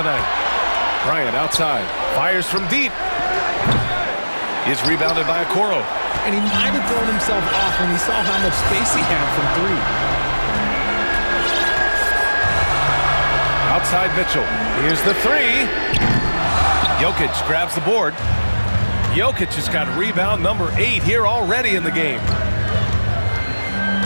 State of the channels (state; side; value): inverted; both; correlation -1.00